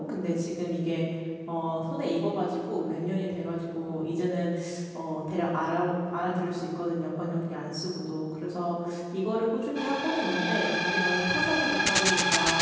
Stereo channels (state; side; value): identical; both; correlation 1.00